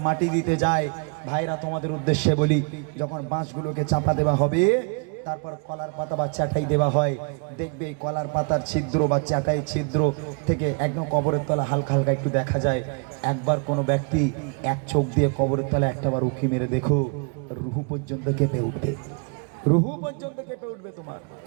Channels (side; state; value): left; quieter; 35.0 dB